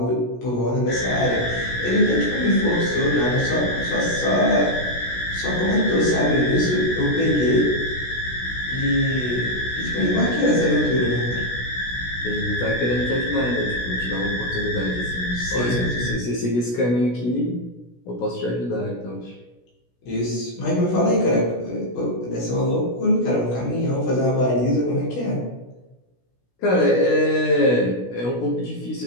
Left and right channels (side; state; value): right; late; 16 ms